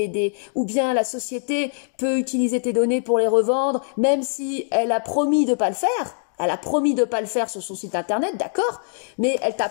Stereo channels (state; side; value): silent; right; digital silence